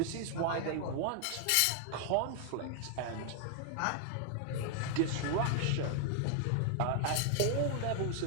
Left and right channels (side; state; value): both; different; correlation 0.00